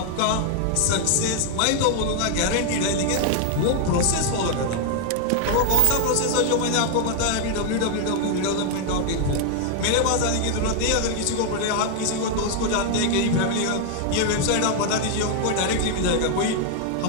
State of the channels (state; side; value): different; both; correlation 0.00